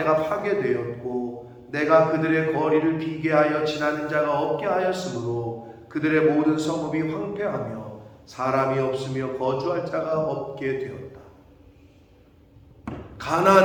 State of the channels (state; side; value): identical; both; correlation 1.00